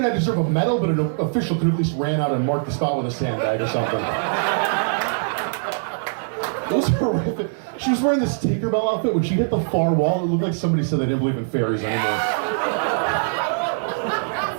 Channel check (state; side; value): silent; left; 64 dB below the other